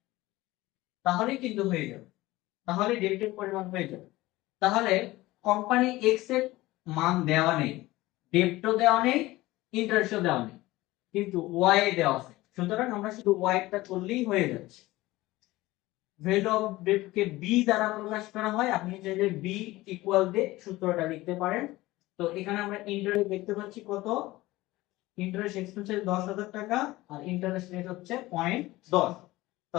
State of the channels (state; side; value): quieter; right; 18.6 dB